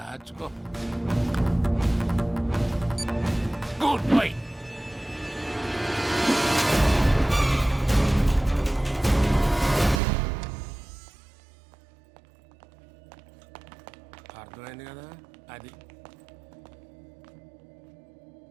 Goodbye. అర్థమైంది కదా? అది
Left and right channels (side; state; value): left; drops out; at 10.0 s